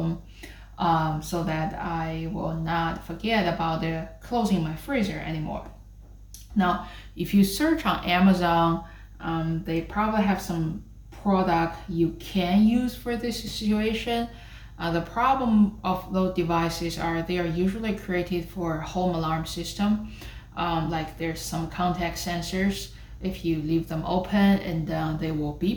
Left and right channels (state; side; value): identical; both; correlation 1.00